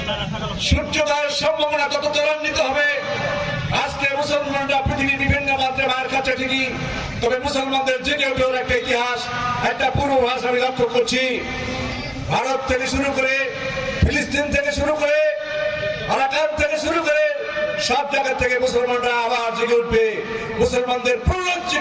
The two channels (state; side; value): identical; both; correlation 1.00